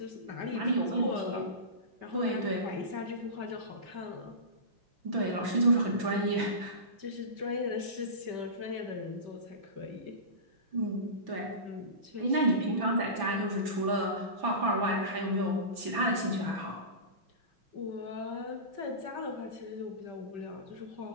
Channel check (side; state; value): left; late; 6.0 ms